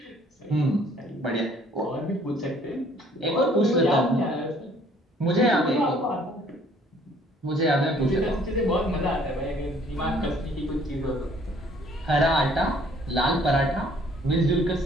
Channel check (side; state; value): both; normal; correlation 0.59